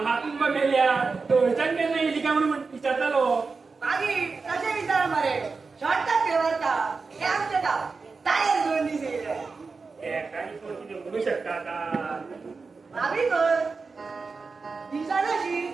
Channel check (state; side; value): quieter; left; 4.4 dB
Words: मेल्या थंयच्यान केन्ना येयली काय म्हणून विचारतालो मागीर कशें विचार मरे शॉर्टाक घेवता हे आमचे गांव टायर 2 दीस येयले एकानी कोण कितें म्हणू शकता आतां भाभी कर दिसानाशी